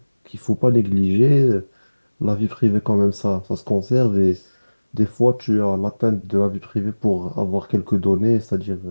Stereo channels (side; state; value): both; inverted; correlation -1.00